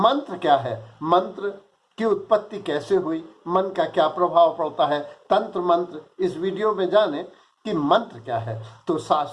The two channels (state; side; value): identical; both; correlation 1.00